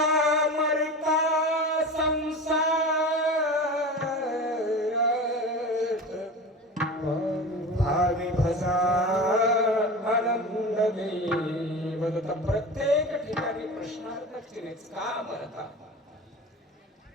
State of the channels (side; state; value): both; normal; correlation 0.31